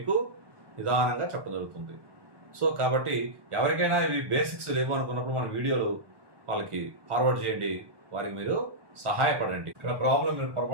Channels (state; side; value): late; left; 1.2 ms